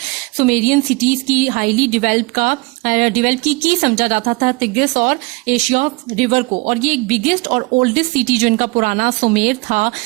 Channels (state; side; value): quieter; left; 26.0 dB